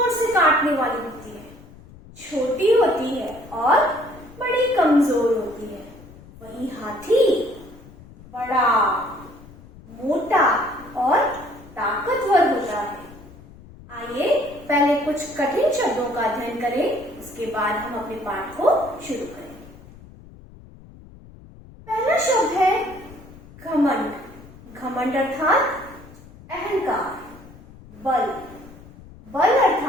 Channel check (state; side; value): noise; left; rumble, 20 dB below the sound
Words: से काटने वाली होती है, छोटी होती है और बड़ी कमजोर होती है। वही हाथी बड़ा, मोटा और ताकतवर होता है। आइए पहले कुछ कठिन शब्दों का अध्ययन करें, उसके बाद हम अपने पाठ को शुरू करें। पहला शब्द है घमंड। घमंड अर्थात अहंकार। बल, बल